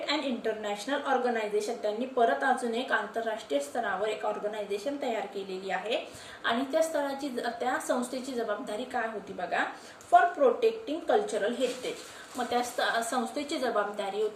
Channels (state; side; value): identical; both; correlation 1.00